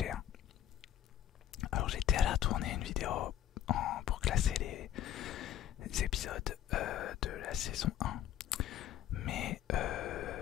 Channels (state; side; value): quieter; right; 11.4 dB